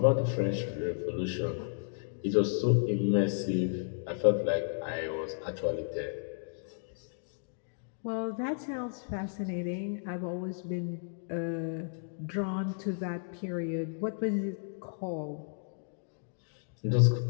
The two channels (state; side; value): silent; right; digital silence